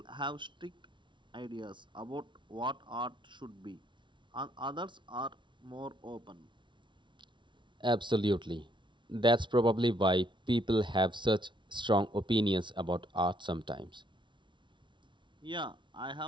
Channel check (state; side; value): late; left; 0.24 ms